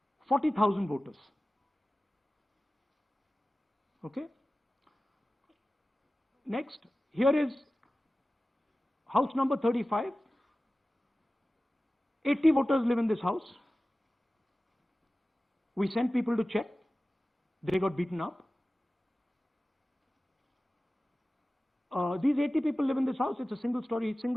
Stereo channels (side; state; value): both; normal; correlation 0.96